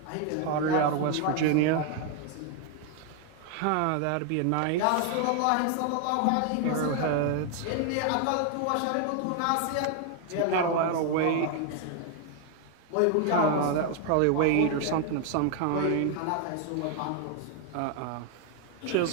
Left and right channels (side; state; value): both; different; correlation 0.01